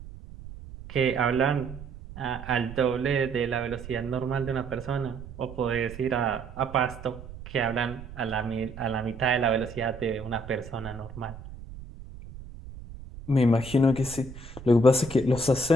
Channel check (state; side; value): noise; right; rumble, 14 dB below the sound